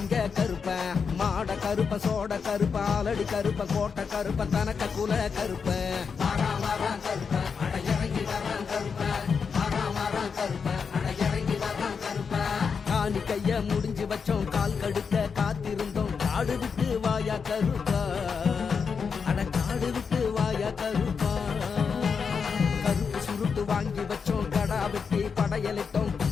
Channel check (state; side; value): quieter; right; 5.9 dB